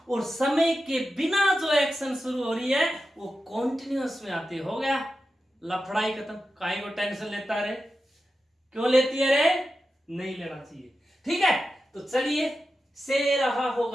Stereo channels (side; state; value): both; normal; correlation 0.91